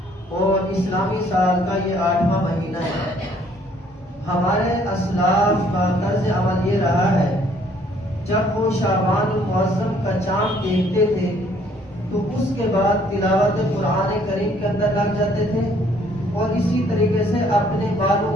اور اسلامی سال کا یہ 8واں مہینہ ہے۔ ہمارے اسلاف کا طرز عمل یہ رہا ہے، جب وہ شعبان المعظم کا چاند دیکھتے تھے تو اس کے بعد تلاوت قرآن کریم کے اندر لگ جاتے تھے اور اسی طریقے سے اپنے مالوں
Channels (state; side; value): normal; both; correlation 0.62